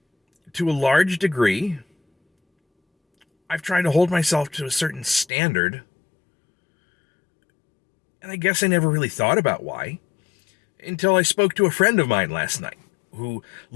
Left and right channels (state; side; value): drops out; right; at 5.2 s